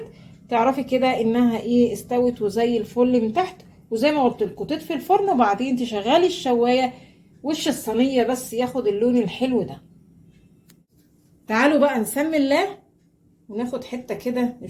تعرفي كده انها ايه استوت وزي الفل من تحت. وزي ما قلت لكم تطفي الفرن وبعدين تشغلي الشوايه وش الصينيه بس ياخد اللون الحلو ده. تعالوا بقى نسمي الله وناخد حته كده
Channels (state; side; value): identical; both; correlation 1.00